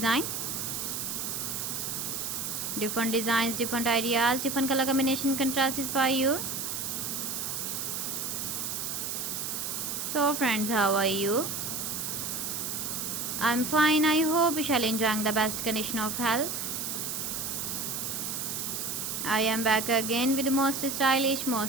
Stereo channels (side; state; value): right; noise; hiss, 3 dB below the sound